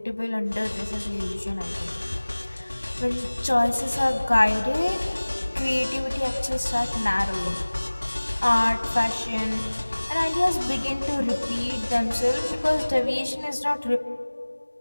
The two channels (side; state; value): both; inverted; correlation -1.00